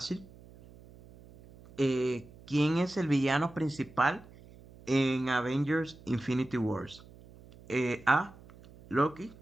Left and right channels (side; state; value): right; noise; hum, 22 dB below the sound